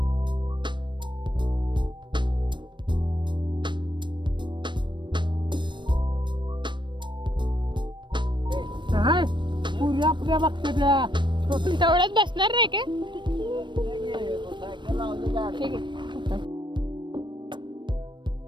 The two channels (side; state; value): left; late; 0.22 ms